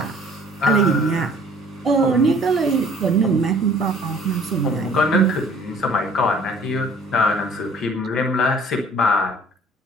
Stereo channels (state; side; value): normal; both; correlation 0.54